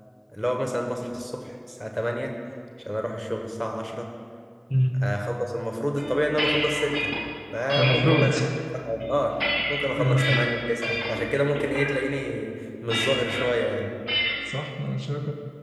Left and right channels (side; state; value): both; identical; correlation 1.00